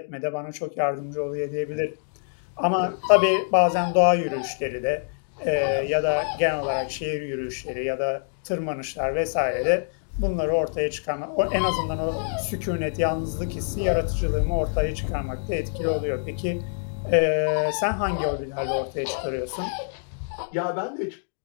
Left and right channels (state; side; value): silent; right; digital silence